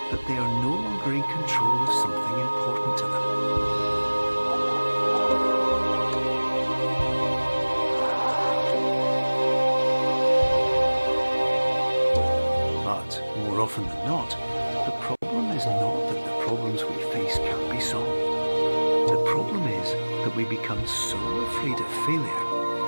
that they are no longer in control of something important to them. But more often than not, the problem is not that the problems we face can't be solved. The problem is that we become so afraid of failure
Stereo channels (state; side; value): inverted; both; correlation -1.00